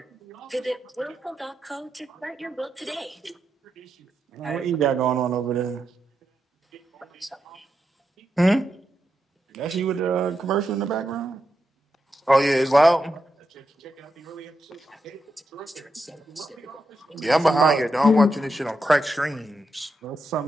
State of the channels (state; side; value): normal; both; correlation 0.85